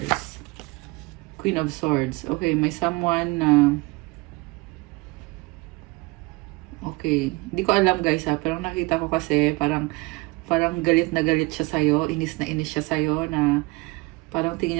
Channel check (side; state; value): left; quieter; 24.4 dB